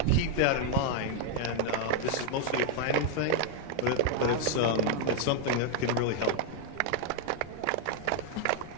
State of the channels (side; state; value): both; different; correlation 0.00